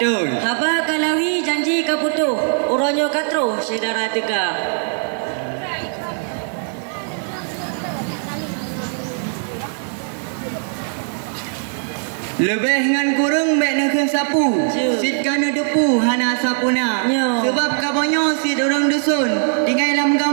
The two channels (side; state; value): left; silent; 66 dB below the other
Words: Haba kalawi janji kaputuh. Uronyo katruh syedara teka. Lebih ngan kurung baik nak sapu. Sit kana depu hana sapuna. Sebab kabonyo sit orang dusun tinggal dalam